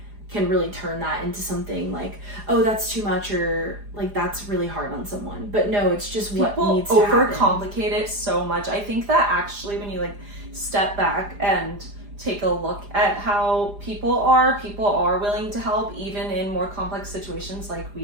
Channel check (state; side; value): late; left; 4.9 ms